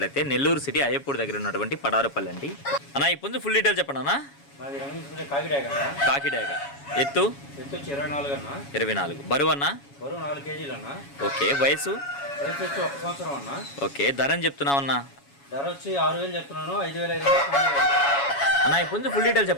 నెల్లూరు సిటీ అయ్యప్పూడి దగ్గర ఉన్నటువంటి పడారుపల్లి అండి. అన్న ఈ పుంజు ఫుల్ డీటెయిల్ చెప్పండి అన్న. కాకిడాగ ఎత్తు 24 బరువు అన్న 4 కేజీలు అన్న. ఓకే వయసు వచ్చి 1 సంవత్సరం అన్న. ఓకే ధర అని చెప్తున్నావు అన్న. ధర వచ్చి 6,000 చెప్తున్నాను. 5,500 అన్న ఈ పుంజు ఫుల్ డీటెయిల్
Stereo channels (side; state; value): right; late; 7.2 ms